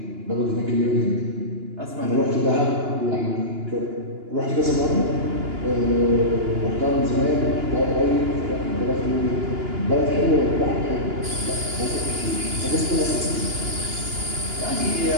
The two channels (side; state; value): left; late; 2.9 ms